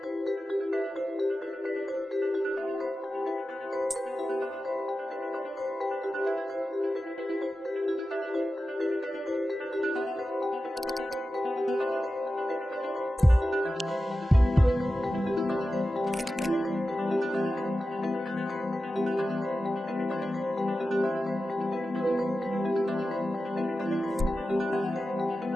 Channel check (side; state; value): both; normal; correlation 0.93